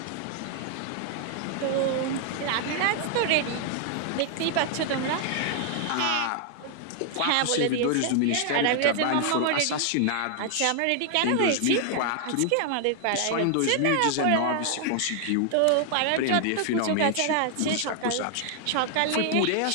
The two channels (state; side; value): different; both; correlation 0.00